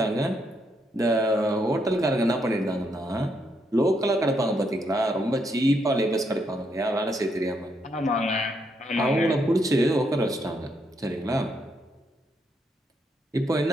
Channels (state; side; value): normal; both; correlation 0.77